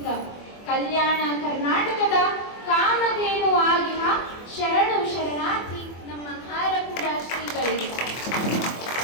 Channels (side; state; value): right; late; 24 ms